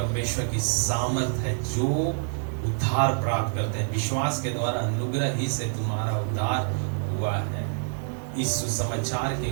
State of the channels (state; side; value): silent; left; digital silence